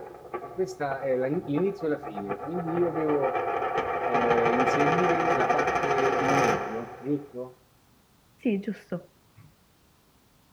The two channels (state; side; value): identical; both; correlation 1.00